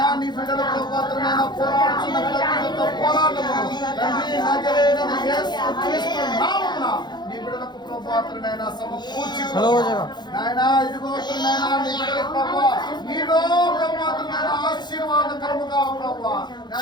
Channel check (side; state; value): right; late; 0.21 ms